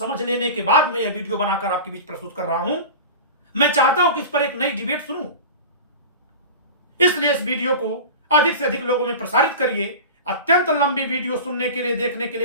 लेने के बाद मैं यह वीडियो बनाकर आपके बीच प्रस्तुत कर रहा हूं। मैं चाहता हूं कि इस पर एक नई डिबेट सुनूं, इसलिए इस वीडियो को अधिक से अधिक लोगों में प्रसारित करिए। अत्यंत लंबी वीडियो सुनने के लिए, देखने के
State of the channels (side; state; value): both; inverted; correlation -0.32